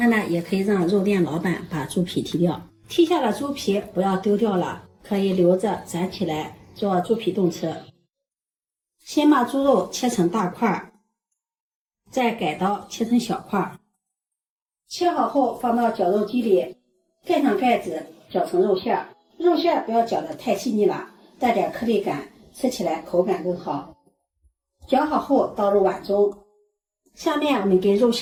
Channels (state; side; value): identical; both; correlation 1.00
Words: 的也可以讓肉店老板把豬皮剔掉。剔下的豬皮不要丟掉了，可以留着攒起來做豬皮凍吃。先把豬肉切成大塊，再改刀切成小塊。切好後放到绞肉機裡，蓋上蓋子，绞成肉馅。肉馅不要绞得太細膩了，带點顆粒感，吃起來口感更好。绞好後倒入碗中。下面我們給肉